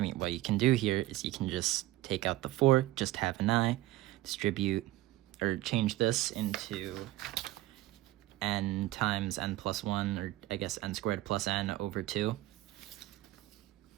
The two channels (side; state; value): left; quieter; 16.6 dB